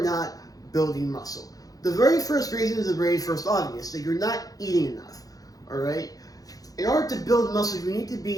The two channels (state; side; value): late; right; 0.17 ms